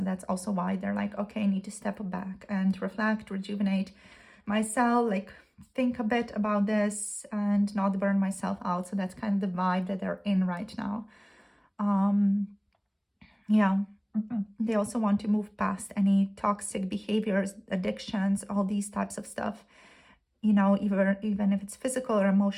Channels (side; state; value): both; identical; correlation 1.00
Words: that's also why they're like, okay, I need to step back and reflect, rejuvenate myself, like think a bit about this and not burn myself out. So that's kind of the vibe that they're in right now. Yeah, they also want to move past any toxic behaviors, addictions, all these types of stuff, you know, even if it's physical or